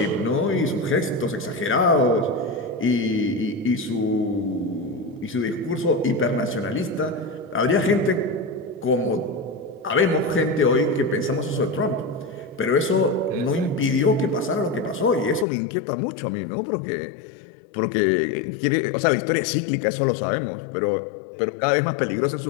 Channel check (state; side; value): drops out; right; at 15.5 s